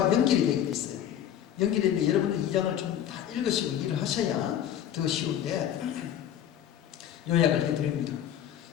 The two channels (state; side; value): quieter; right; 10.3 dB